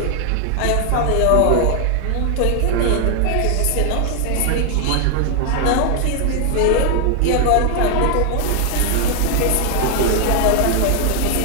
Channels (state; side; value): different; both; correlation 0.00